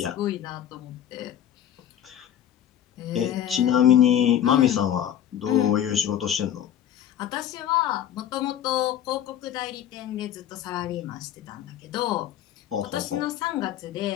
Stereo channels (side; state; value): right; quieter; 10.5 dB